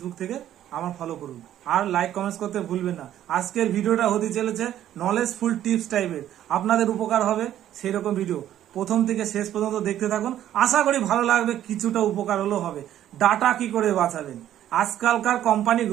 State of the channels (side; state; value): left; quieter; 11.7 dB